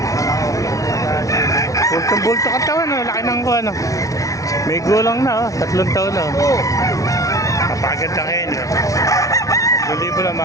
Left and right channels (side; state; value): right; late; 0.17 ms